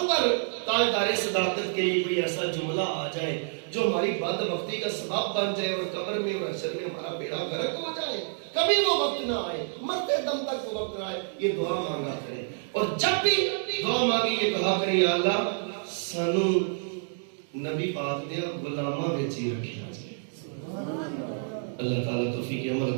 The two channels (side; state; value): left; silent; digital silence